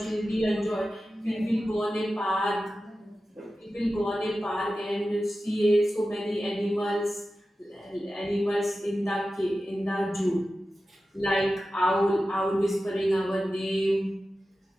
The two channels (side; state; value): both; normal; correlation 0.94